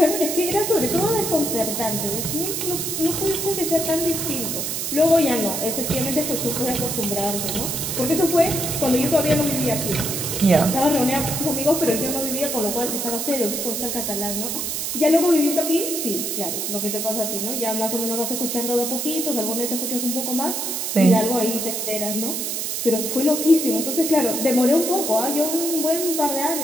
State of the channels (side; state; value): right; noise; hiss, 2 dB below the sound